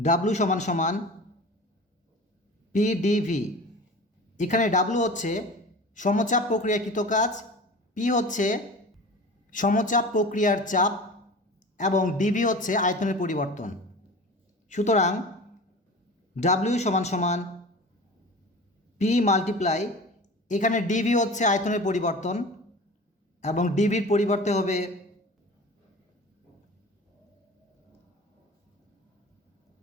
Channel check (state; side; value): normal; both; correlation 0.36